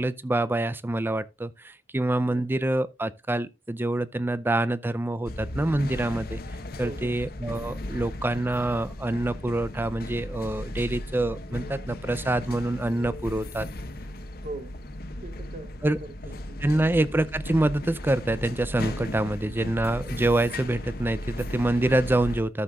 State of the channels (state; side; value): normal; both; correlation 0.87